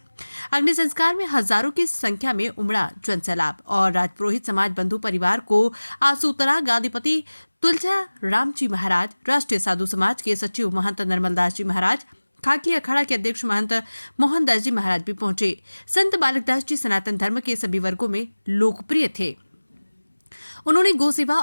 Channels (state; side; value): inverted; both; correlation -1.00